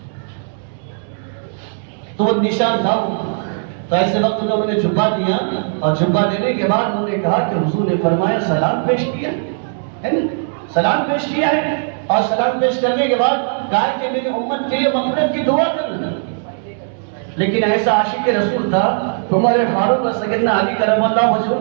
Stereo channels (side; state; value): left; silent; digital silence